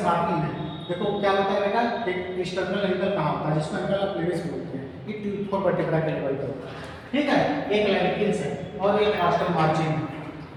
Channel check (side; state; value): both; identical; correlation 1.00